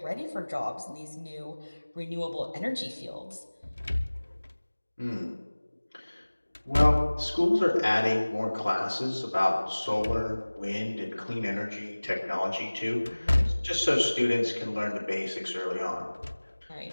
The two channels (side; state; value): both; inverted; correlation -1.00